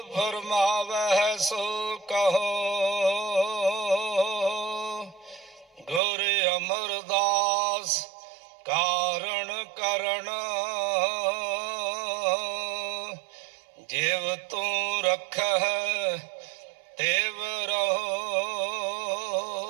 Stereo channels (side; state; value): left; drops out; at 6.0 s